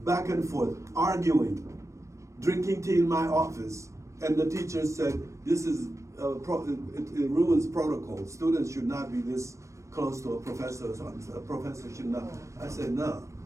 and forth, arguing, drinking tea in my office. And the teacher said, this is, it ruins protocol. Students should not be this close to a professor. A professor should not. I said, no.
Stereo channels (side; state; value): left; late; 0.15 ms